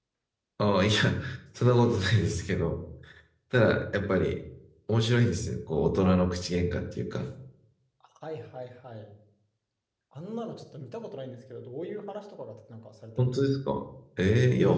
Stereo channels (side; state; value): both; identical; correlation 1.00